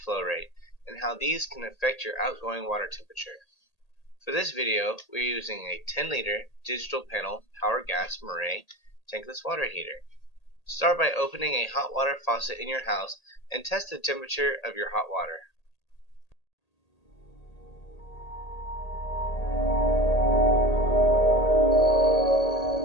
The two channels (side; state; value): right; late; 1.8 ms